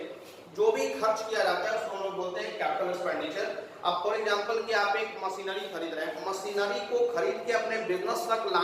जो भी खर्च किया जाता है उसको हम लोग बोलते हैं कैपिटल एक्सपेंडिचर। अब फॉर एग्जांपल कि आप एक मशीनरी खरीद रहे हैं, मशीनरी को खरीद के अपने बिजनेस तक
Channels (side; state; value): both; identical; correlation 1.00